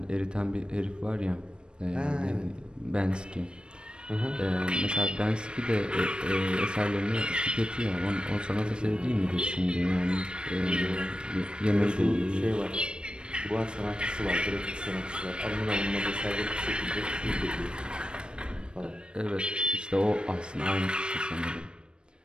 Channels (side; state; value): left; late; 0.054 ms